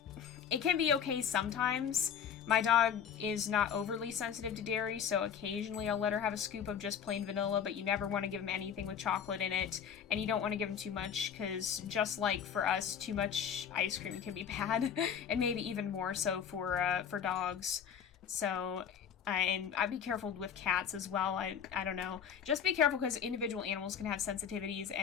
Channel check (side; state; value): right; quieter; 7.9 dB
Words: it can be okay sometimes. My dog is not overly sensitive to dairy, so occasionally I'll let her have a scoop of just plain vanilla, but you never want to give him anything with chocolate in it, and you don't want to give him too much, because just like for us, too much ice cream can be bad, and maybe even more so for dogs. So, and I'd be careful with cats as well. I don't know. Just be careful, because individual animals can have sensitivities,